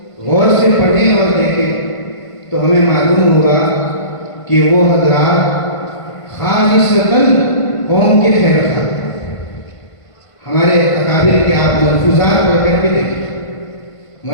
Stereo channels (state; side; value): late; right; 1.5 ms